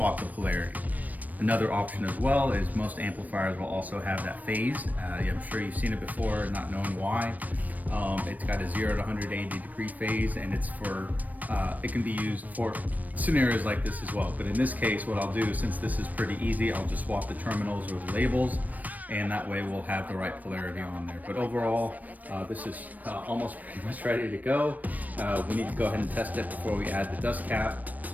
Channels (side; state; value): left; late; 0.079 ms